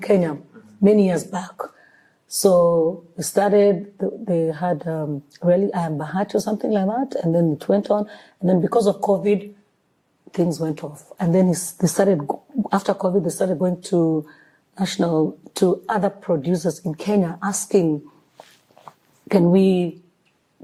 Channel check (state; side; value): identical; both; correlation 1.00